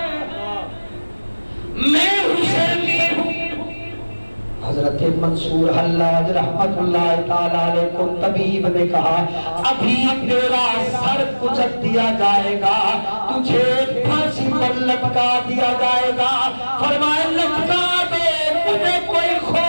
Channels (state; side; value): inverted; both; correlation -1.00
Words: میں حسینی ہوں۔ حضرت منصور حلاج رحمت اللہ تعالیٰ علیہ کو طبیب نے کہا ابھی تیرا سر کچل دیا جائے گا، تجھے پھانسی پر لٹکا دیا جائے گا۔ فرمایا لٹکا دے، مجھے کوئی